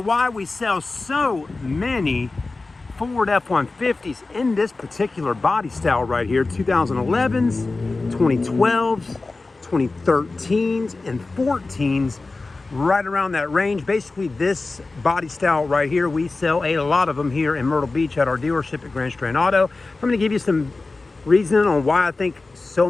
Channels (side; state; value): right; quieter; 3.5 dB